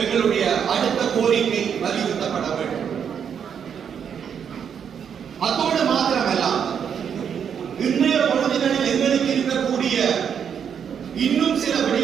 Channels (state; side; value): quieter; left; 7.7 dB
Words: எங்களுடைய அடுத்த கோரிக்கை வலியுறுத்தப்பட வேண்டும். அத்தோடு மாத்திரமல்ல, இன்றைய பொழுதுகளில் எங்களுக்கு இருக்கக்கூடிய இன்னும் சில